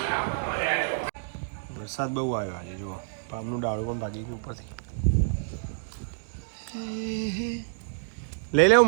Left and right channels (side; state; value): left; silent; digital silence